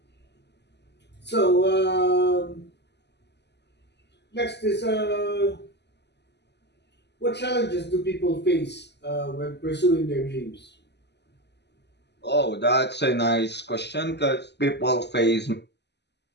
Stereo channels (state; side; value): late; right; 0.50 ms